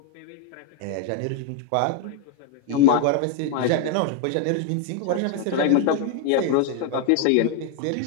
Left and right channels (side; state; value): both; different; correlation 0.00